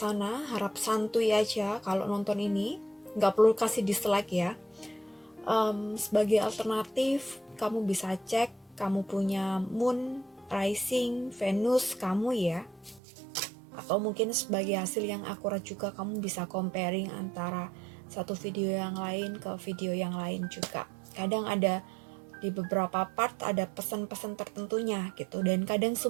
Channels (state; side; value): drops out; left; at 13.0 s